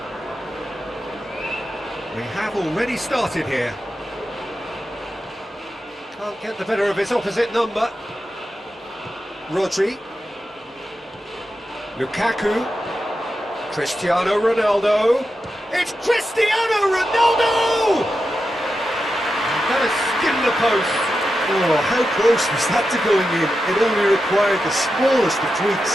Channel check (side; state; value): both; normal; correlation 0.89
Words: We have already started here. Can't get the better of his opposite number. Rodri. Lukaku. Cristiano Ronaldo. It's Cristiano Ronaldo! That has skimmed the post. Oh, how close was that to going in? It only required the smallest of